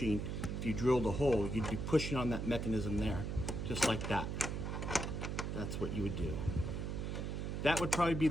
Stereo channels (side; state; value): right; noise; hum, 3 dB below the sound